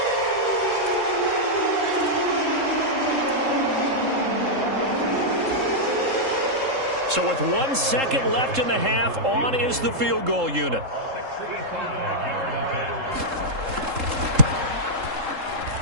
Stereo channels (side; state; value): left; late; 3.7 ms